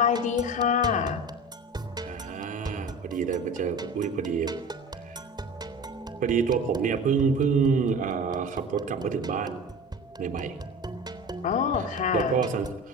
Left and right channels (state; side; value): normal; both; correlation 0.35